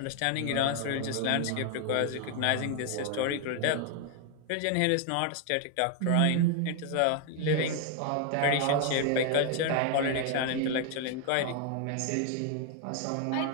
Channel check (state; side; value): different; both; correlation 0.01